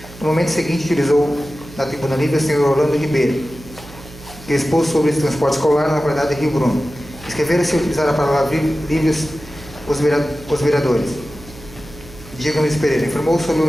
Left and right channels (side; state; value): right; noise; hum, 19 dB below the sound